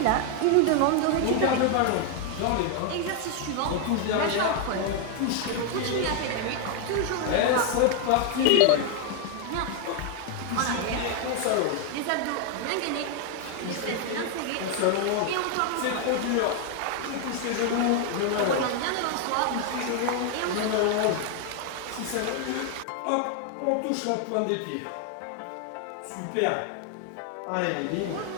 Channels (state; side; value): different; both; correlation 0.01